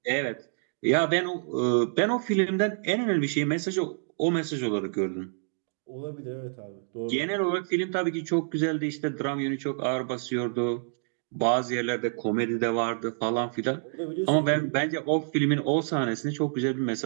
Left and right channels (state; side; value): silent; left; digital silence